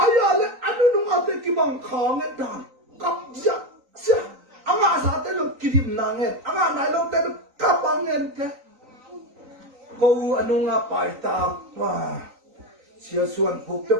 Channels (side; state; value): left; late; 3.9 ms